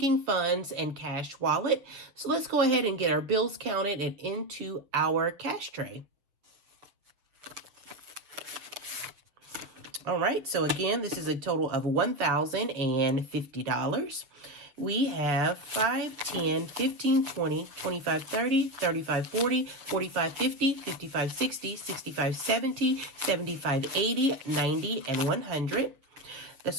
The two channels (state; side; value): late; left; 7.1 ms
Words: funds and cash wallet. So let's go ahead and get our bills counted and into our cash tray. All right, so again, this is a total of $1,050. We have 5, 10, 15, 20, 25, 30, 35, 40, 45, 50, 55, 60, 65, 70, 75, 80, 90, and 100.